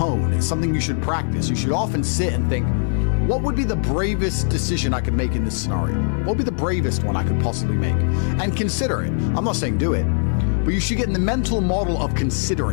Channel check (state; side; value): silent; right; 56 dB below the other